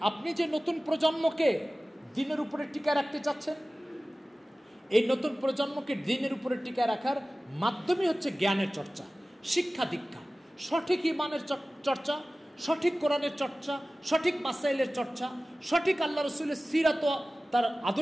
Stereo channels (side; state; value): both; normal; correlation 0.97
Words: আপনি যে নতুন প্রজন্মকে দিনের উপরে টিকা রাখতে চাচ্ছেন, এই নতুন প্রজন্মকে দিনের উপরে টিকা রাখার মাধ্যমই হচ্ছে জ্ঞানের চর্চা, শিক্ষা দীক্ষা, সঠিক ইমানের চর্চা, সঠিক কোরআনের চর্চা, সঠিক মাসাইলের চর্চা, সঠিক আল্লাহ রসুলের সিরাত, তার